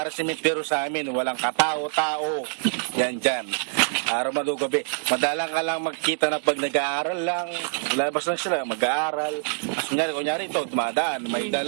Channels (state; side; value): silent; left; digital silence